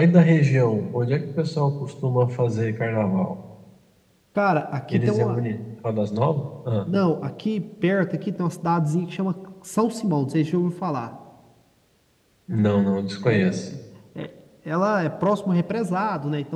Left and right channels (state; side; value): identical; both; correlation 1.00